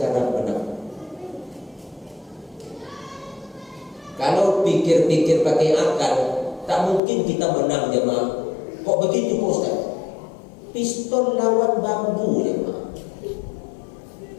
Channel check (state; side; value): drops out; right; at 7.0 s